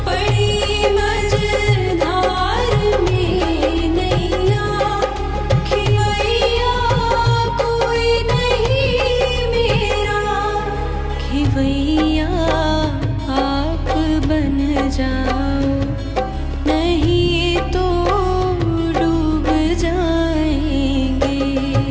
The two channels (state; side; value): identical; both; correlation 1.00